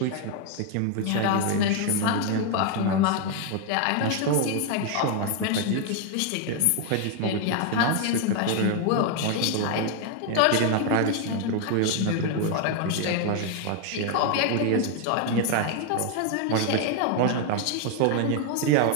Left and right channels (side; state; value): both; different; correlation 0.00